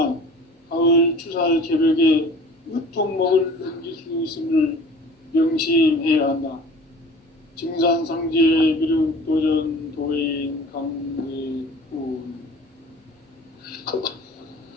가을 추살 개벽의 으통목을 넘길 수 있음을 명심해야 한다. 증산상제 미륵도전 도인 강대훈.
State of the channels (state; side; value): normal; both; correlation 0.44